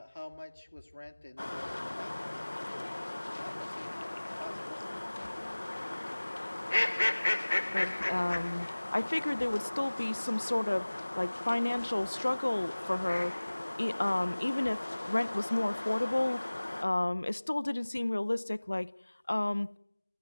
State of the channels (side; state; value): both; inverted; correlation -1.00